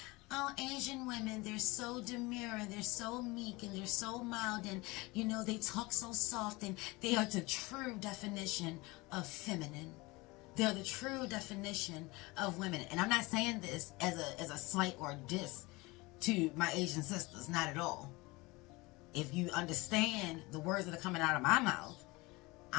Oh, Asian women, they're so demure, and they're so meek, and they're so mild, and, you know, they talk so soft, and they are the true definition of feminine. They're the true definition of women. And I'm not saying this as a slight or a diss to my Asian sisters, not at all. If you understand the words that are coming out of my mouth,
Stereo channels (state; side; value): quieter; right; 23.2 dB